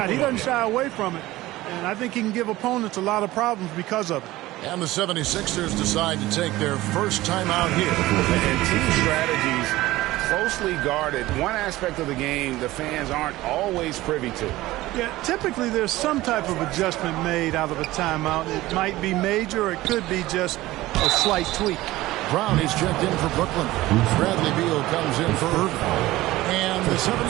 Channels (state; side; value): quieter; left; 17.5 dB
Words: He doesn't shy away from it. And I think he can give opponents a lot of problems because of it. And the 76ers decide to take their first time out here. And team strategies closely guarded. One aspect of the game the fans aren't always privy to. Yeah, typically there's some type of adjustment made out of a timeout. It might be major or it could be just a slight tweak. Brown is checked in for Brooklyn. Bradley Beal comes in for Irving. And the